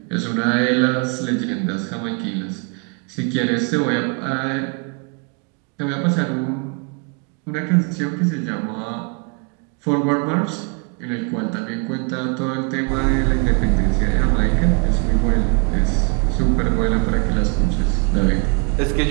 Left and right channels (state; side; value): quieter; left; 35.7 dB